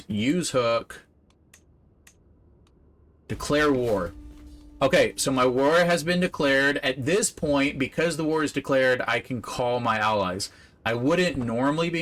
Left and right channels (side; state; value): both; identical; correlation 1.00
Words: use hook. Declare war. Okay, so my war has been declared. At this point, because the war is declared, I can call my allies. I wouldn't normally